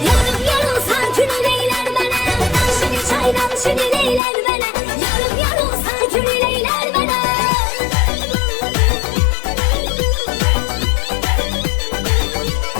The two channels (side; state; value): right; drops out; at 4.2 s